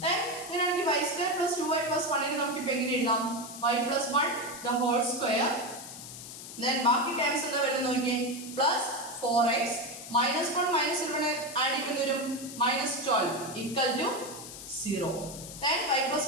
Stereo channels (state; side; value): noise; left; hiss, 12 dB below the sound